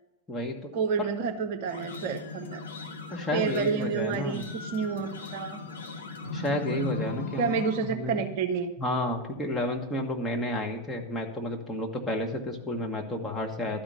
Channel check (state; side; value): normal; both; correlation 0.05